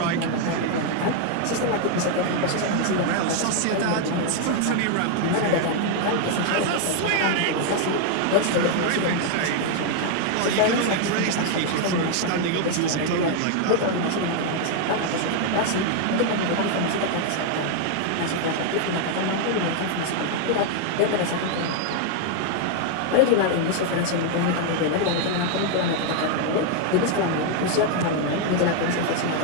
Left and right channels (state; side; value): different; both; correlation 0.00